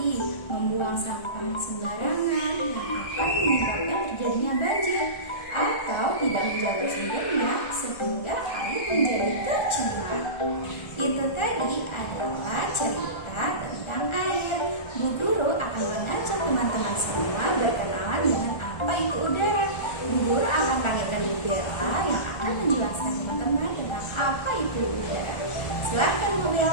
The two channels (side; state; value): right; late; 1.3 ms